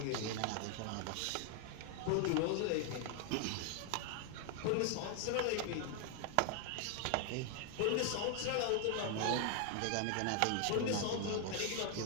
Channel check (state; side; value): different; both; correlation 0.00